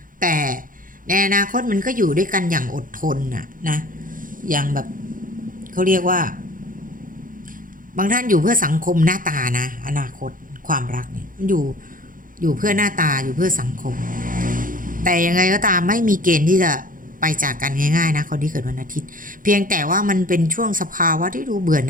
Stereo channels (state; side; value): late; left; 0.40 ms